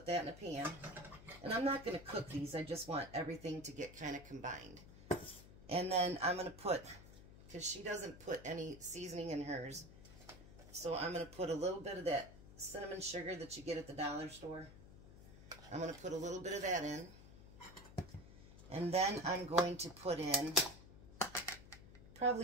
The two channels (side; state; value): left; noise; hum, 17 dB below the sound